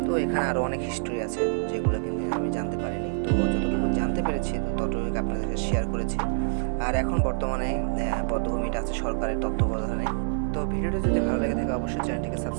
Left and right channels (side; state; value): left; silent; digital silence